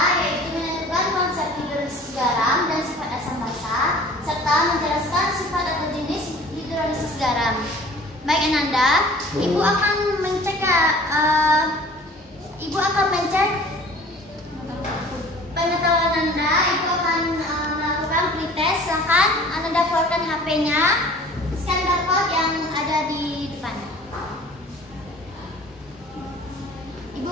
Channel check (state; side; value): normal; both; correlation 0.47